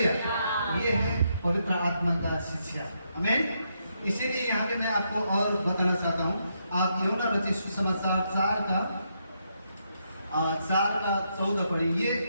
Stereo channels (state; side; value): inverted; both; correlation -0.79